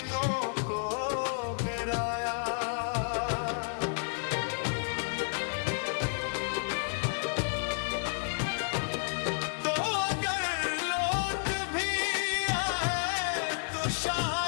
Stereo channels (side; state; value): right; silent; digital silence